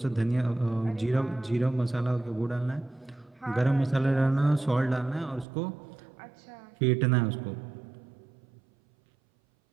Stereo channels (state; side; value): drops out; left; at 5.5 s